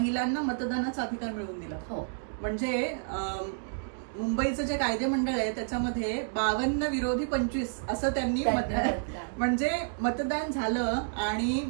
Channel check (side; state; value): left; silent; digital silence